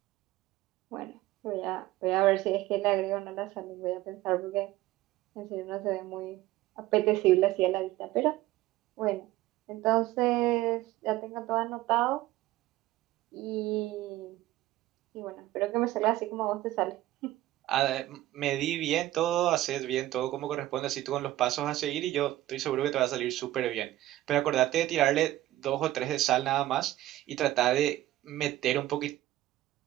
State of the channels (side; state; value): left; quieter; 15.6 dB